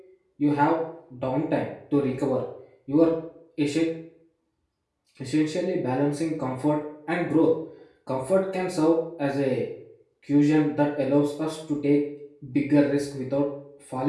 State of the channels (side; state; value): both; identical; correlation 1.00